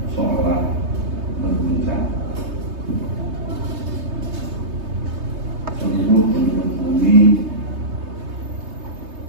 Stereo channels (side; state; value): left; late; 3.2 ms